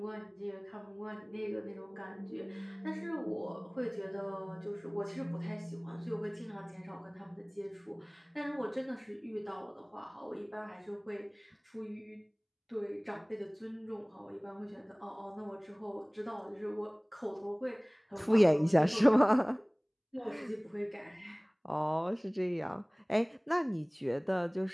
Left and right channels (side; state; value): both; identical; correlation 1.00